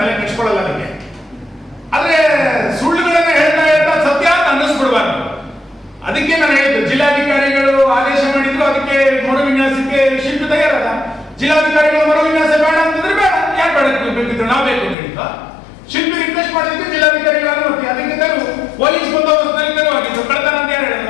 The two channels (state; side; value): drops out; right; at 15.0 s